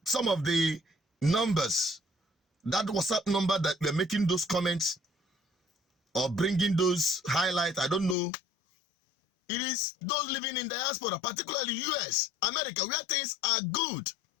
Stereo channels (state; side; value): drops out; right; at 8.2 s